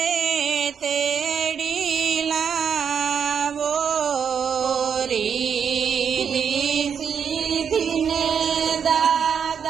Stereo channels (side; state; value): left; quieter; 7.3 dB